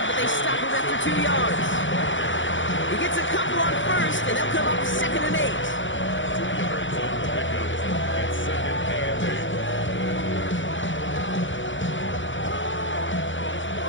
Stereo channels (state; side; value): late; right; 0.55 ms